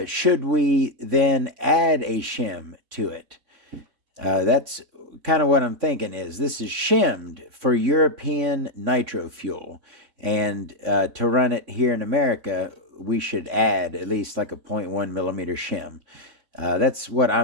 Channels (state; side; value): late; left; 3.6 ms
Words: should we then add a shim to it? That's kind of what I'm thinking. Is this is shimmed for European nitro fuel, and to run it here in America, we should add at least like a 0.1 millimeter shim. That's what